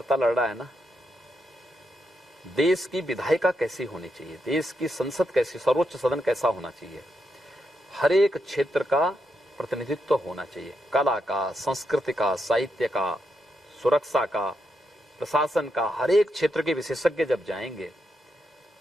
लड़ रहा है ना। देश की विधायिका कैसी होनी चाहिए, देश की संसद कैसी, सर्वोच्च सदन कैसा होना चाहिए, हर एक क्षेत्र का प्रतिनिधित्व होना चाहिए। कला का, संस्कृति का, साहित्य का, सुरक्षा का, प्रशासन का, हर एक क्षेत्र के विशेषज्ञ जब जाएंगे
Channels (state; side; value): normal; both; correlation 0.82